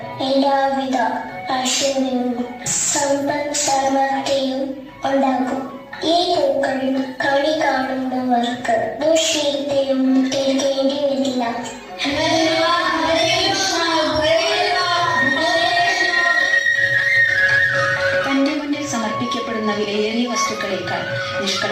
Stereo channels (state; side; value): identical; both; correlation 1.00